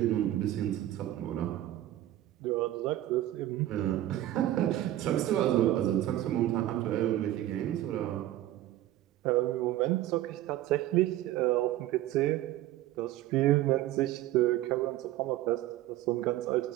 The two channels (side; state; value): left; quieter; 14.2 dB